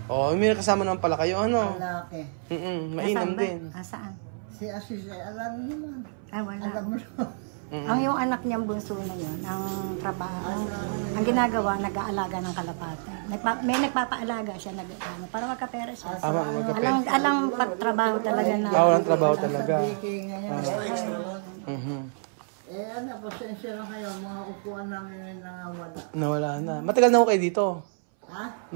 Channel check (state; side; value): silent; left; 59 dB below the other